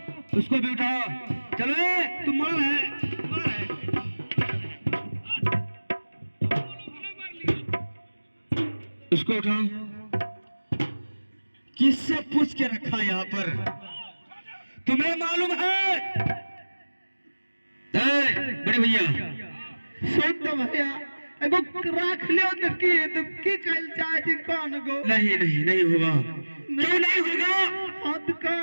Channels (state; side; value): inverted; both; correlation -1.00